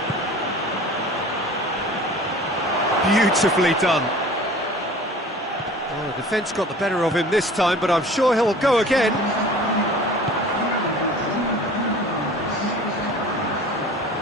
Beautifully done. Oh, the defence got the better of him this time, but I'm sure he'll go again.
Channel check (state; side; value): normal; both; correlation 0.43